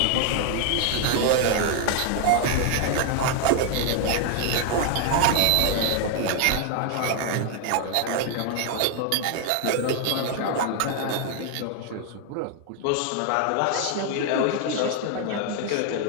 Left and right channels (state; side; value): different; both; correlation 0.00